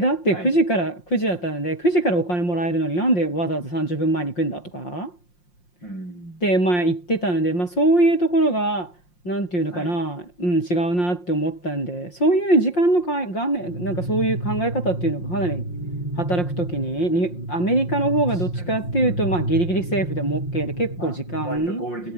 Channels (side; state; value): right; late; 5.6 ms